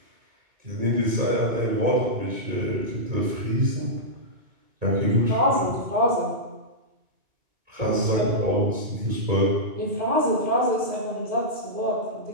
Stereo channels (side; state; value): left; late; 2.2 ms